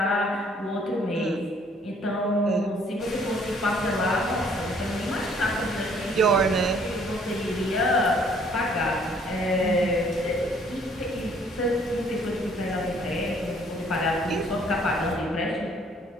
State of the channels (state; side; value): normal; both; correlation 0.61